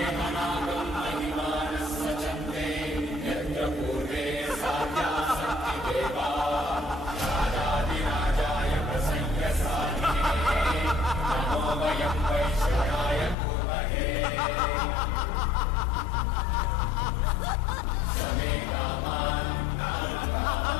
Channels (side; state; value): right; drops out; at 13.4 s